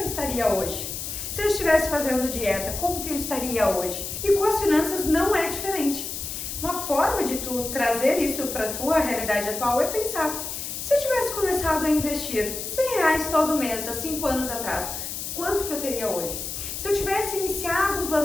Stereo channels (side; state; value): left; noise; hiss, 6 dB below the sound